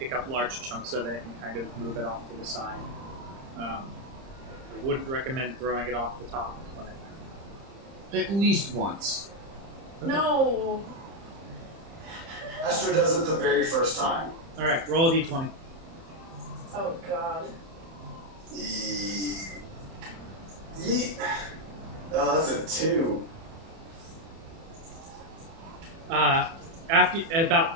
up large chunks of it and kind of move it off to the side. I wouldn't recommend throwing it off the top, but At least once. No. Esther does it the very first time. all right, roll a d20. Oh God. Oh, that's a 2. After about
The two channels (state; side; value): late; left; 30 ms